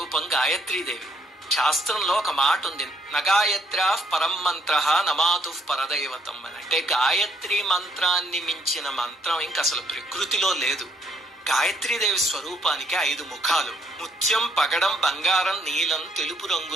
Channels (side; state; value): both; normal; correlation 0.69